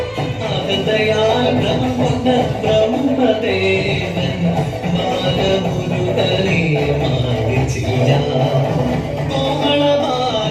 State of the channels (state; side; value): identical; both; correlation 1.00